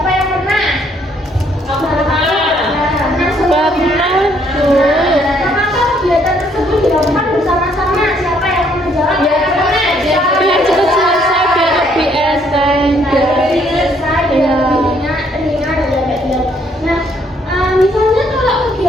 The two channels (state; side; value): normal; both; correlation 0.67